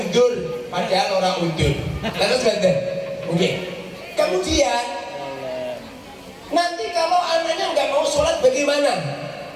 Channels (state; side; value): identical; both; correlation 1.00